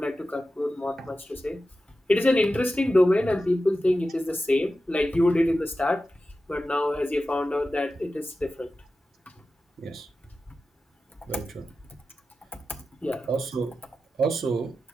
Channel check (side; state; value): both; normal; correlation 0.93